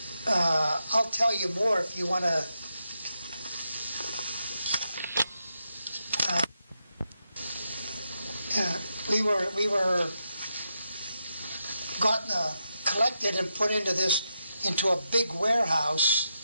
I'll tell you more if you want to. We were gotten collected and put into a big warehouse,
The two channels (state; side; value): inverted; both; correlation -0.85